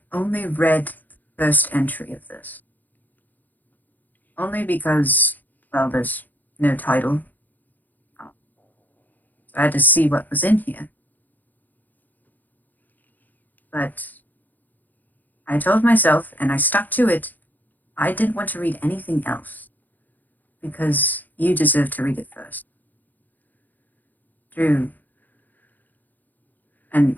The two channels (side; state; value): right; late; 0.084 ms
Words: only read the first entry of this. Only because, well, there's no title. So I had to see what was in here. But I told myself, and I stuck to it, I didn't want to read anything else. Because you deserve to read it first. Drew. And